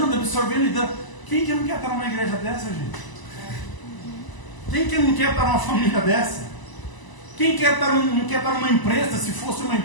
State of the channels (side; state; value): right; late; 1.0 ms